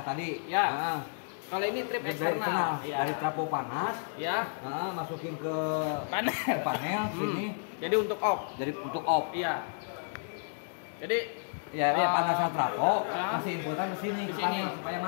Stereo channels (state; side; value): silent; right; digital silence